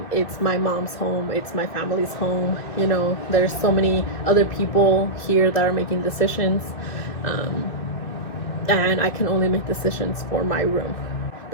It's my mom's home, it's my family's home. You know, there's so many other people here that are making decisions, and I can only make decisions for my room.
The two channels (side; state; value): right; late; 2.5 ms